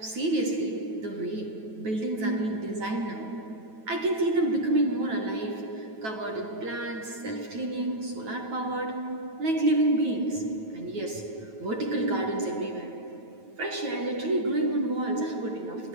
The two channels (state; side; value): late; left; 9.2 ms